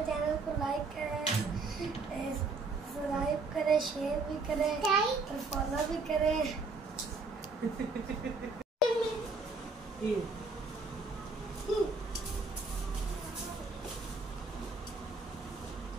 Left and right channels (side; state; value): left; quieter; 3.8 dB